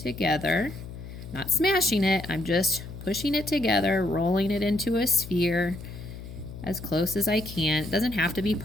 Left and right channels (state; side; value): noise; left; hum, 12 dB below the sound